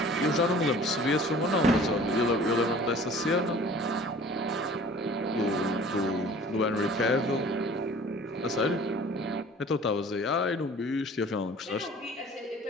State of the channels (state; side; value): normal; both; correlation 0.47